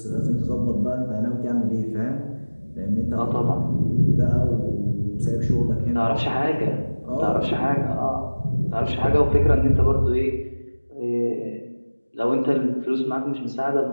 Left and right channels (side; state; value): both; inverted; correlation -1.00